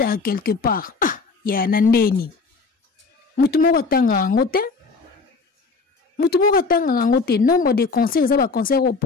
à quelque part. Ah, ya nandeni. Mutumoko tanga ngote. Mutumoko tanga ngote. Nombre de concerts, ça va concert au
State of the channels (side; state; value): right; quieter; 4.4 dB